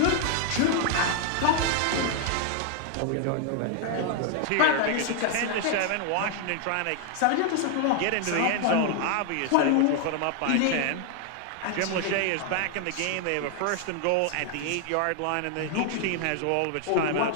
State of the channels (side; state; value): both; different; correlation 0.00